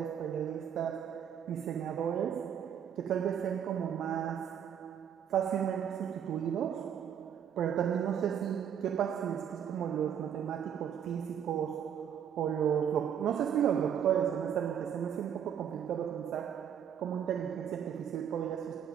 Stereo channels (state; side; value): quieter; left; 8.7 dB